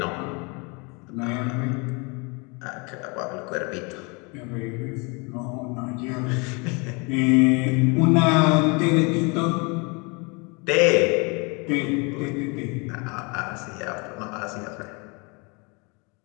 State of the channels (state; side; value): quieter; right; 30.4 dB